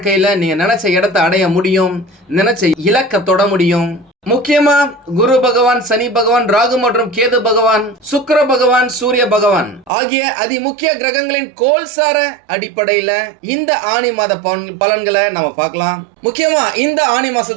நீங்க நினைச்ச இடத்தை அடைய முடியும், நினைச்ச இலக்க தொட முடியும். முக்கியமா குரு பகவான், சனி பகவான், ராகு மற்றும் கேது பகவான், சுக்கிர பகவான், சூரிய பகவான் ஆகிய அதி முக்கிய கிரகங்களின் கோல்சார அடிப்படையில இந்த ஆனி மாத பலன்களை நம்ம பார்க்கலாம். முக்கியமா இந்த ஆனி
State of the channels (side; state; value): left; drops out; at 9.9 s